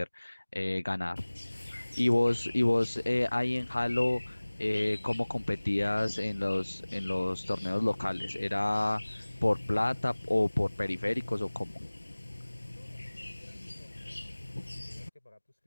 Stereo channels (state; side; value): inverted; both; correlation -1.00